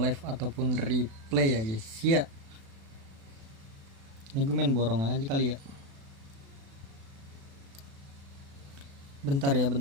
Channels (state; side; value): late; left; 36 ms